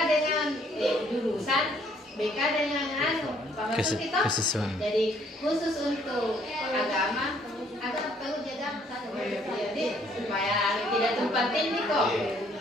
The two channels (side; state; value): both; normal; correlation 0.64